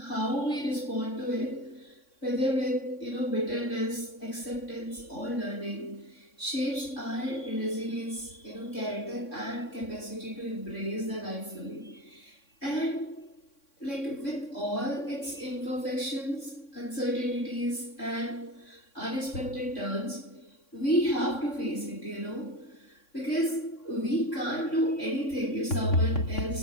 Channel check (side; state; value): right; late; 3.6 ms